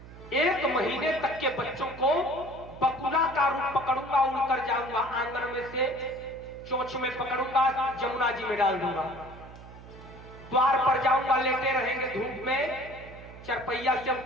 1 महीने तक के बच्चों को बकुला का रूप पकड़ूंगा, उड़कर जाऊंगा, आंगन में से चोंच में पकड़ूंगा, जमुना जी में डाल दूंगा, द्वार पर जाऊंगा, लेटे रहेंगे धूप में, चरपैया से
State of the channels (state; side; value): noise; right; hum, 17 dB below the sound